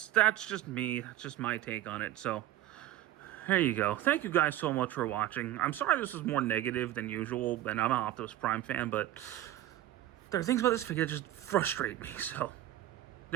just me. That's just my take on it. So, there you go. Thank you guys so much for watching. I'm sorry this is more negative than usual, and I'm an Optimus Prime fan, but there are things about this figure that just frustrate me. So,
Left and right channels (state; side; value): quieter; left; 14.1 dB